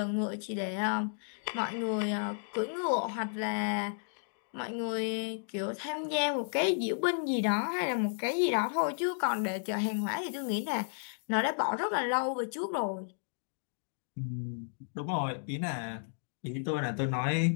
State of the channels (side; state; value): right; silent; digital silence